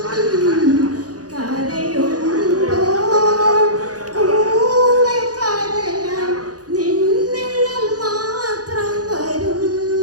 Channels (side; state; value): left; late; 0.68 ms